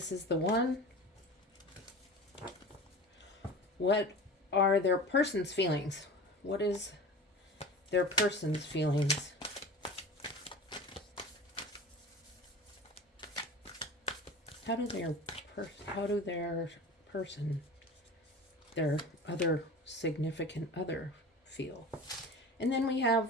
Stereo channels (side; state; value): both; normal; correlation 0.35